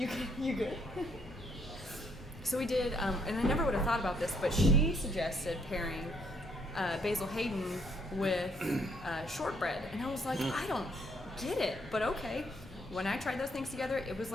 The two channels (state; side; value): normal; both; correlation 0.69